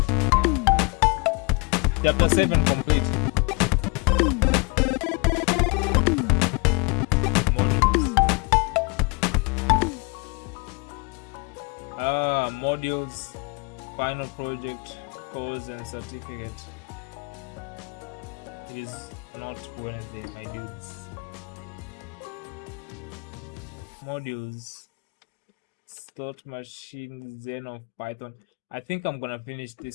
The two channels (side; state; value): right; quieter; 30.3 dB